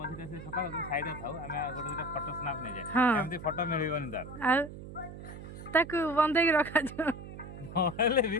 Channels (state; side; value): noise; right; hum, 12 dB below the sound